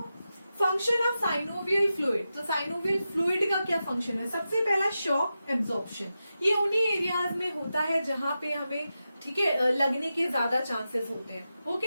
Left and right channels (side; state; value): both; inverted; correlation -0.91